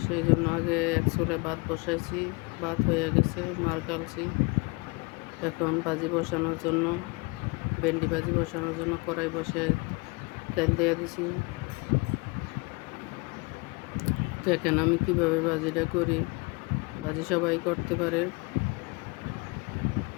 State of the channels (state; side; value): quieter; right; 28.0 dB